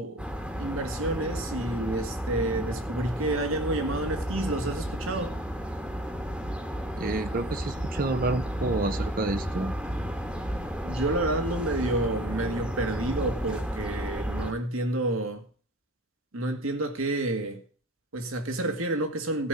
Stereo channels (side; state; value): both; normal; correlation 0.40